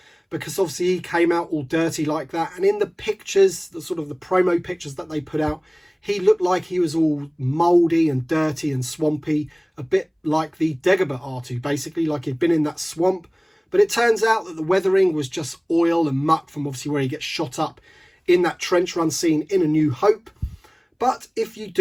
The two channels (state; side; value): identical; both; correlation 1.00